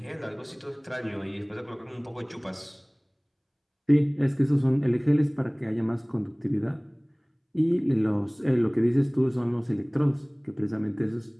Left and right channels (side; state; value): both; identical; correlation 1.00